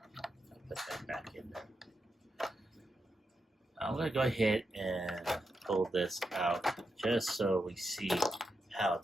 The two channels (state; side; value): normal; both; correlation 0.85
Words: put that back in there. I'm going to go ahead and pull this out just so we see how